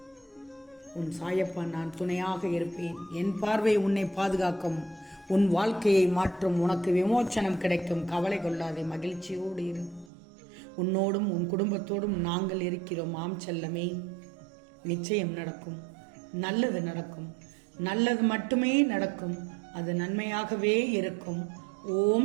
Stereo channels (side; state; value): left; drops out; at 10.1 s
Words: உன் சாயப்பா நான் துணையாக இருப்பேன். என் பார்வை உன்னை பாதுகாக்கும். உன் வாழ்க்கையை மாற்றும். உனக்கு விமோச்சனம் கிடைக்கும். கவலை கொள்ளாதே, மகிழ்ச்சியோடு இரு. உன்னோடும் உன் குடும்பத்தோடும் நாங்கள் இருக்கிறோம். ஆம் செல்லமே, நிச்சயம் நடக்கும். நல்லது நடக்கும். நல்லது மட்டுமே நடக்கும். அது நன்மையாகவே இருக்கும்.